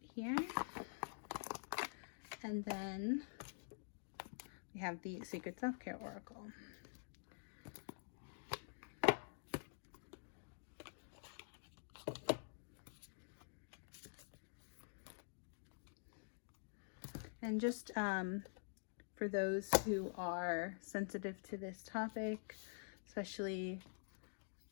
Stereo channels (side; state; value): right; silent; digital silence